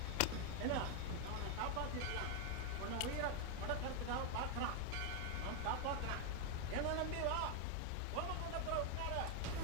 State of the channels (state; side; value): different; both; correlation 0.01